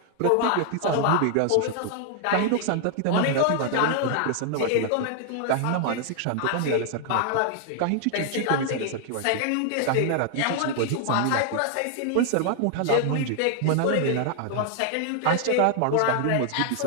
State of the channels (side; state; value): both; different; correlation 0.00